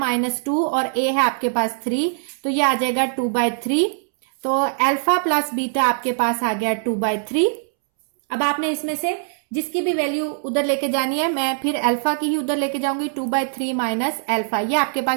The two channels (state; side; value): silent; left; 65 dB below the other